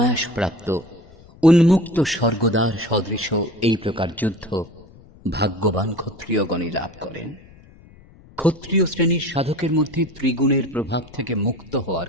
প্রাপ্ত উন্মুক্ত স্বর্গদ্বার সদৃশ এই প্রকার যুদ্ধ ভাগ্যবান ক্ষত্রিয়গণই লাভ করেন। ক্ষত্রিয় শ্রেণীর সাধকের মধ্যে ত্রিগুণের প্রভাব থেকে মুক্ত হওয়ার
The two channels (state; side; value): noise; left; rumble, 24 dB below the sound